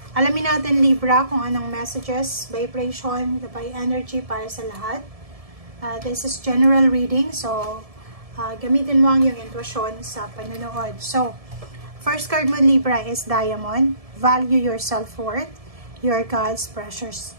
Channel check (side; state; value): left; late; 1.7 ms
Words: Alamin natin Libra kung anong messages, vibration, by energy para sa lahat. This is general reading, so gamitin mo ang iyong intuition sa panonood. So, first card mo Libra is Diamond. Value your self-worth. You're God's precious